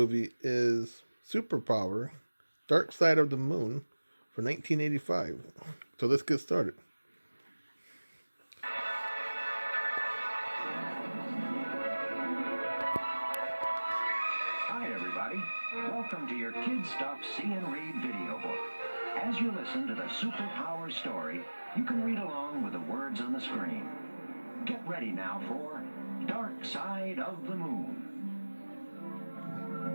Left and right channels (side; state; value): both; inverted; correlation -1.00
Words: is Superpower, Dark Side of the Moon for 1985. So let's get started. Hi, everybody. Welcome to your Kid Stuff See and Read video book. As you listen to the Superpower story, you can read along with the words on the screen. Get ready now for Dark Side of the Moon.